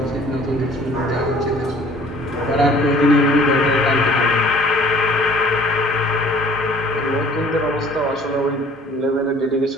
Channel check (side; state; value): both; normal; correlation 0.52